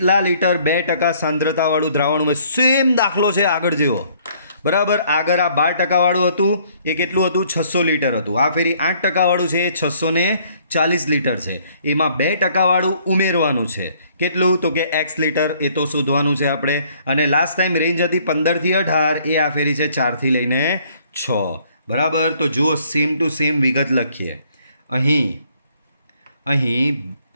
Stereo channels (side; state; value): both; inverted; correlation -0.62